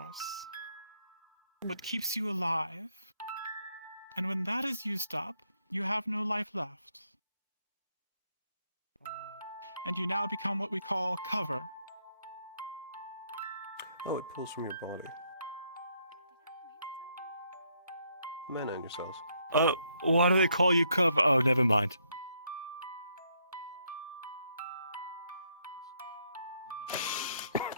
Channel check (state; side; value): inverted; both; correlation -0.73